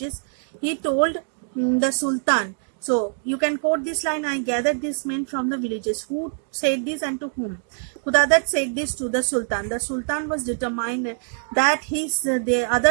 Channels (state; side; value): silent; left; digital silence